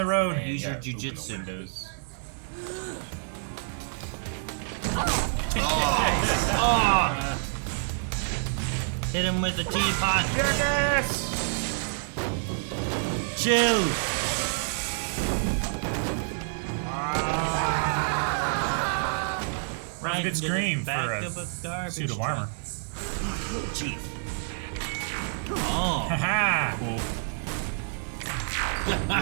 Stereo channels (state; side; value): silent; left; digital silence